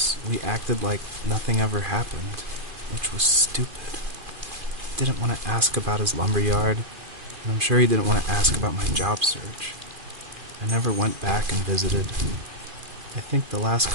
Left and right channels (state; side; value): late; left; 2.4 ms